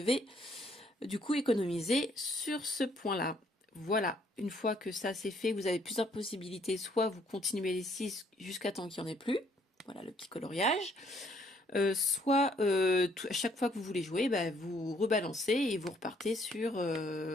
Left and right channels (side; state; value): both; normal; correlation 0.66